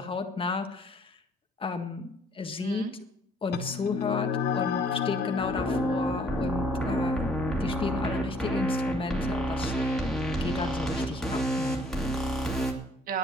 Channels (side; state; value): both; normal; correlation 0.60